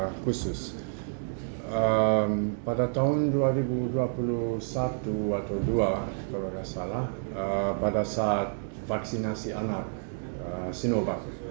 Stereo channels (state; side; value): silent; left; digital silence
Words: khusus. Pada tahun 2021 atau 2 kalau nggak salah, pada saat vaksinasi anak Sinovac